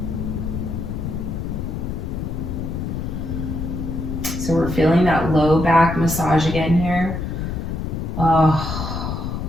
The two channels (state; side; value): noise; left; rumble, 4 dB below the sound